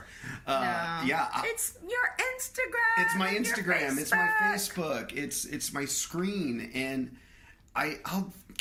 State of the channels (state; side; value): identical; both; correlation 1.00